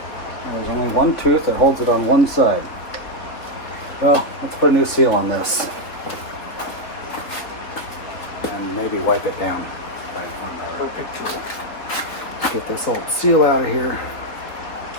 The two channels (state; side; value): late; right; 4.0 ms